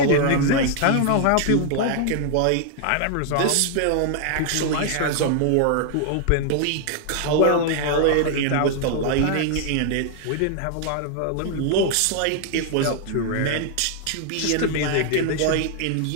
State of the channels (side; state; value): both; different; correlation 0.00